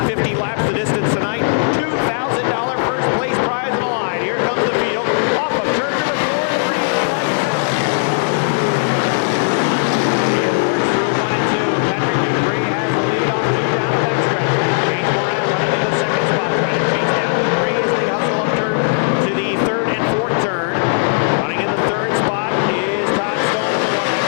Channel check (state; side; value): silent; right; digital silence